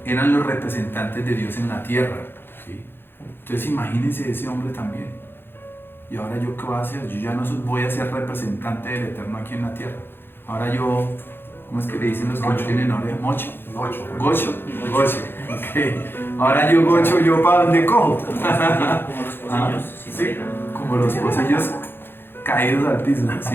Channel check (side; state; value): right; late; 0.10 ms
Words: Eran los representantes de Dios en la tierra, ¿sí? Entonces imagínense ese hombre también. ¿Y ahora yo qué voy a hacer? Yo ya no voy a ser representante del Eterno aquí en la tierra. Ahora yo, ¿cómo es que le dicen los que no Gocho. tienen oreja? ¿Mocho? Gocho. Gocho. Ok. Ahora yo gocho, ¿yo para dónde cojo? como los pocillos sin Sí, oreja. como los pocillos caídos al piso,